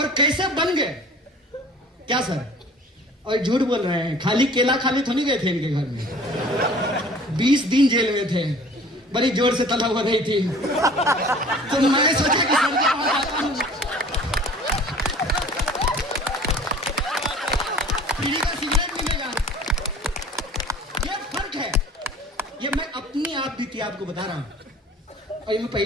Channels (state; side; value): normal; both; correlation 0.47